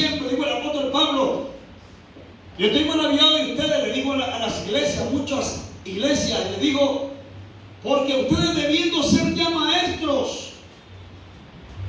Digo el apóstol Pablo, yo estoy maravillado de ustedes, le digo a las iglesias, muchas iglesias, le digo, porque ustedes debiendo ser ya maestros,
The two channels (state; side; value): identical; both; correlation 1.00